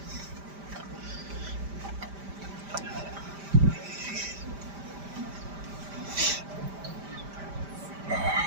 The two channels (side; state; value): left; late; 5.0 ms